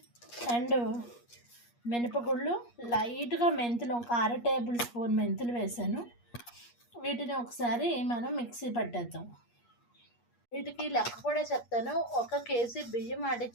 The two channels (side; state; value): right; late; 8.4 ms